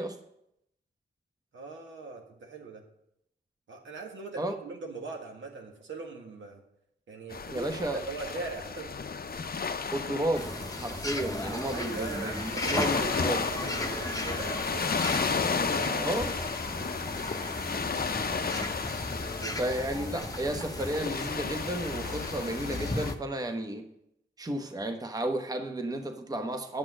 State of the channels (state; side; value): normal; both; correlation 0.37